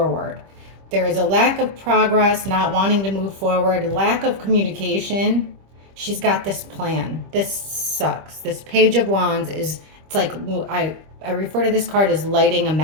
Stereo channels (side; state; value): left; late; 25 ms